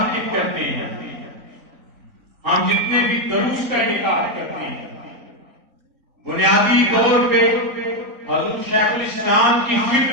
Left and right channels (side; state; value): left; late; 3.5 ms